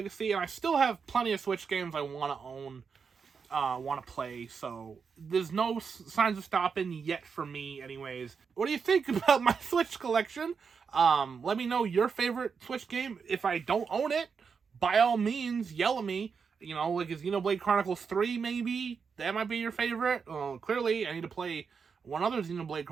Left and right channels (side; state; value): left; quieter; 5.8 dB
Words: And I still have plenty of Switch games I want to own, want to play, so there's no signs of stopping yet for me anyways. What do you think about my Switch collection? Let me know your favorite Switch game. If I don't own it, by all means, yell at me. You know, like, is Xenoblade Chronicles 3 maybe? That might be your favorite. Well, clearly, I need to play one other Xenoblade